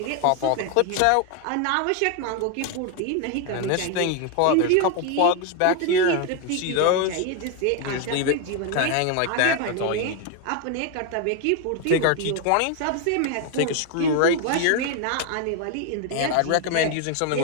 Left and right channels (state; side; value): different; both; correlation 0.01